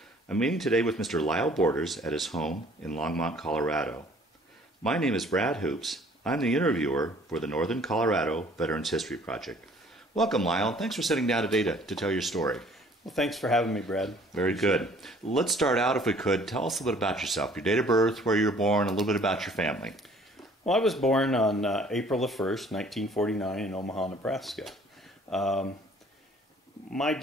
I'm meeting today with Mr. Lyle Borders at his home in Longmont, Colorado. My name is Brad Hoops. I'm the interviewer for the Northern Colorado Veterans History Project. Welcome, Lyle. Thanks for sitting down today to tell your story. Well, thanks for having me, Brad. Very good. Let's start out, if we could. Tell us a little bit about yourself, your date of birth, where you were born, a little bit about your family. Well, I was born on April the 1st, 1949 in Omaha, Nebraska. My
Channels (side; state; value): both; normal; correlation 0.55